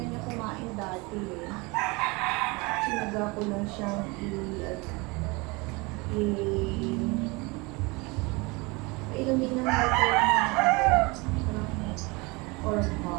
niya kumain dati eh. Sinaga ko lang siyang ilumin ng water or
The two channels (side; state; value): left; quieter; 26.3 dB